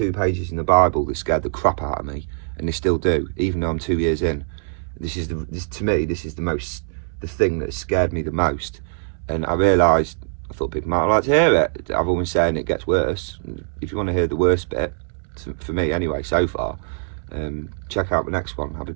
pages in the Bible that scared the crap out of me, and they still do, even though I'm 2 years in. To me, this is the thing that scared me the most. And I realised, I thought people might like to hear it. I've always saying it gets worse. If you want to hear the worst bit, for me anyway, so far, check out the next one. I'll be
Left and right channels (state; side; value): silent; left; 64 dB below the other